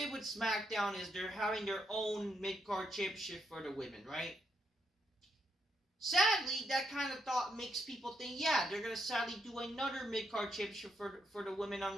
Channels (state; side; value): normal; both; correlation 0.78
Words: with SmackDown is they're having their own mid-card championship for the women, right? Sadly, that kind of thought makes people think, yeah, they're going to sadly do another mid-card championship for the women